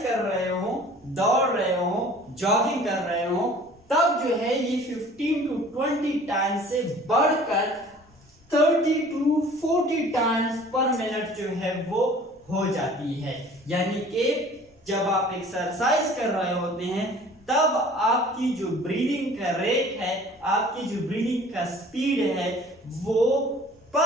कर रहे हो, दौड़ रहे हो, जॉगिंग कर रहे हो, तब जो है ये 15 to 20 टाइम्स से बढ़कर 30 to 40 टाइम्स पर मिनट जो है वो हो जाती है। यानी कि जब आप एक्सरसाइज कर रहे होते हैं तब आपकी जो ब्रीदिंग का रेट है, आपकी जो ब्रीदिंग का स्पीड है वो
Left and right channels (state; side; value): normal; both; correlation 0.48